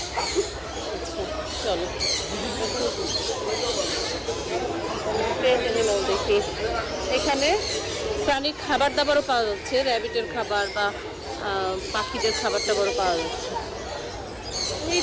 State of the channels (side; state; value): both; identical; correlation 1.00